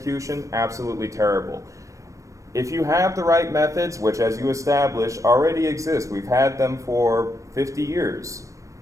absolutely terrible. If you have the right methods, which, as you establish, already exist, we've had them for 50 years,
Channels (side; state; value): left; late; 0.15 ms